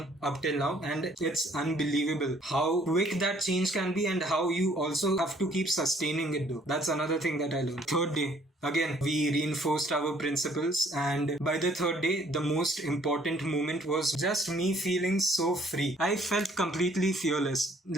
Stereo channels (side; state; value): both; normal; correlation 0.61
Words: up till now, and it's unbelievable how quick that change can be, and how you also have to keep sustaining it though. That's another thing that I learned. Third day, again, we reinforced our principles, and by the third day, the most important moment was just me feeling so free. I felt completely fearless.